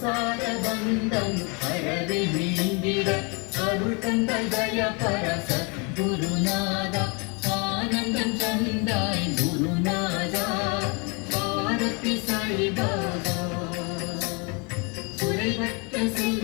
பந்தம் அறவே நீங்கிட அருள் தந்த தயபர சத்குருநாதா. ஆனந்தம் தந்தாய் குருநாதா. ஆரத்தி சாயிபாபா குறைவற்ற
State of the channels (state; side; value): quieter; right; 32.3 dB